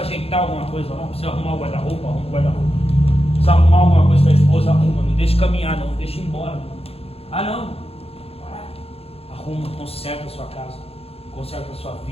ajeitar alguma coisa lá? Precisa arrumar o guarda-roupa? Arruma o guarda-roupa. Precisa arrumar alguma coisa para a esposa? Arruma. Não deixe caminhar, não deixe ir embora. Ah, não. Arruma, conserta a sua casa, conserta a sua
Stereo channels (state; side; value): late; right; 0.29 ms